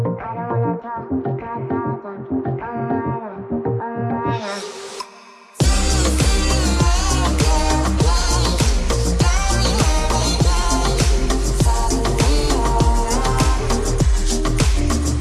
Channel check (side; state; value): both; identical; correlation 1.00